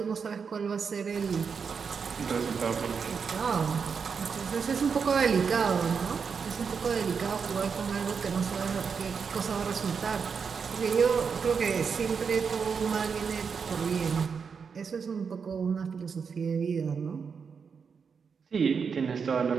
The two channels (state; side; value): quieter; left; 6.0 dB